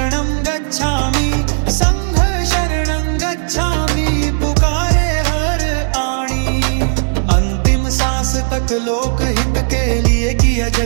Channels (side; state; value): left; silent; digital silence